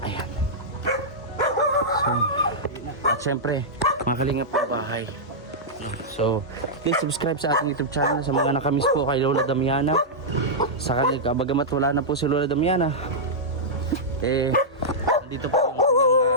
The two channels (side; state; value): both; normal; correlation -0.11